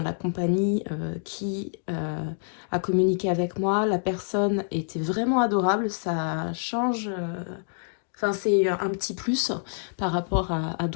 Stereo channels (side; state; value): right; silent; digital silence